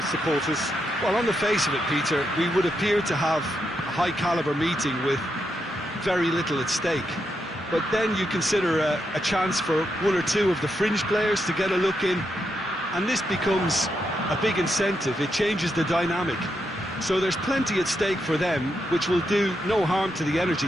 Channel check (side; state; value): both; normal; correlation 0.83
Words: supporters. Well, on the face of it, Peter, we would appear to have a high-caliber meeting with very little at stake. But then you consider a chance for one or two of the fringe players to get a look in, and this becomes a big incentive. It changes the dynamic. So there's plenty at stake for them, which will do no harm to the energy